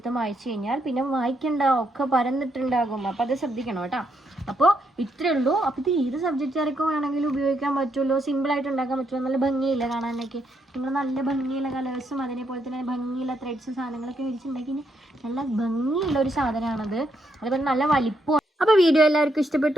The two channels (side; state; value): both; normal; correlation 0.77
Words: വായിച്ചു കഴിഞ്ഞാൽ പിന്നെ വായിക്കണ്ട, ഒക്കെ പരന്നിട്ടുണ്ടാകും. അപ്പം അത് ശ്രദ്ധിക്കണം കേട്ടോ. അപ്പോൾ ഇത്രയേ ഉള്ളൂ. അപ്പോൾ ഇത് ഏത് സബ്ജക്റ്റുകാർക്കും വേണമെങ്കിലും ഉപയോഗിക്കാൻ പറ്റുമല്ലോ, സിമ്പിളായിട്ട് ഉണ്ടാക്കാൻ പറ്റുമല്ലോ. നല്ല ഭംഗിയില്ല കാണാനൊക്കെ. നിങ്ങൾ നല്ല ഭംഗിയുള്ള കളേഴ്സും അതേപോലെ തന്നെ ഭംഗിയുള്ള ത്രെഡ്സും സാധനങ്ങളൊക്കെ മേടിച്ചിട്ടുണ്ടെങ്കിൽ നല്ല ഭംഗിയുള്ള ഒരു സാധനമാണത്. അതുപോലെ നല്ല വലിപ്പം. അപ്പോൾ വീഡിയോ എല്ലാവർക്കും